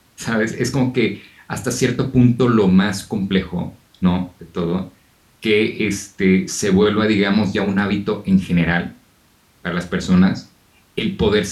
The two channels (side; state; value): both; identical; correlation 1.00